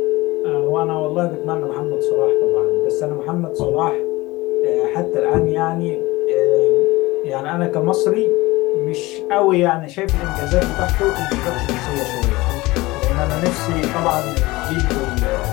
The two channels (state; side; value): quieter; right; 20.6 dB